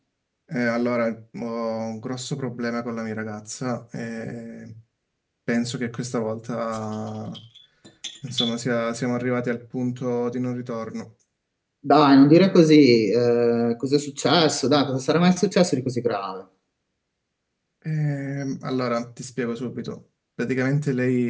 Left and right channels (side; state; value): both; identical; correlation 1.00